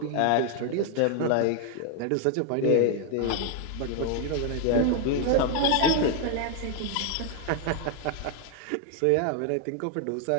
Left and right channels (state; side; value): different; both; correlation 0.01